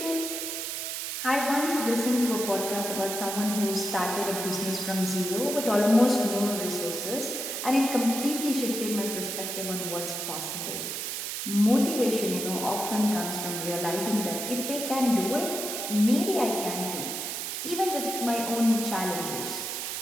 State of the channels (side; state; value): right; noise; hiss, 4 dB below the sound